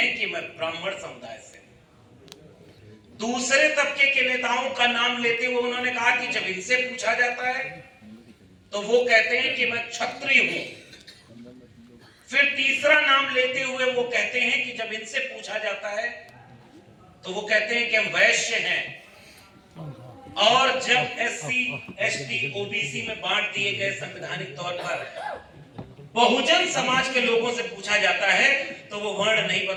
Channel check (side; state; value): both; identical; correlation 1.00